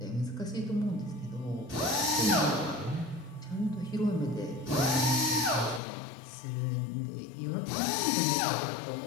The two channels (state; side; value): drops out; right; at 5.8 s